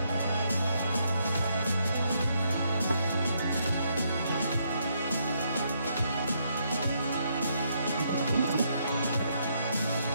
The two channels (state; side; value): inverted; both; correlation -0.75